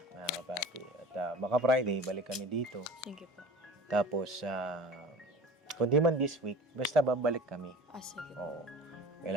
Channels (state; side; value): normal; both; correlation 0.39